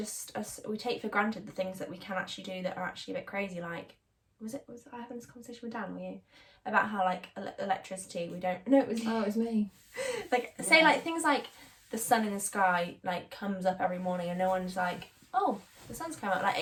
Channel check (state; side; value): identical; both; correlation 1.00